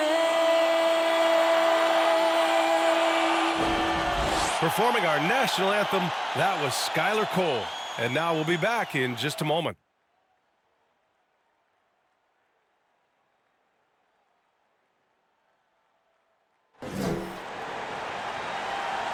Performing our national anthem, that was Skylar Cole. And now we'll be back in just a moment.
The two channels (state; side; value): identical; both; correlation 1.00